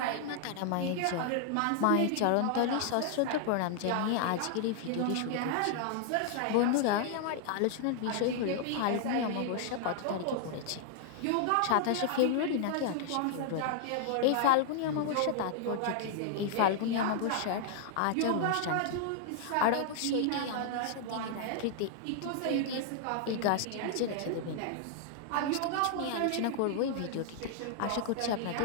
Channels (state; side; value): different; both; correlation 0.00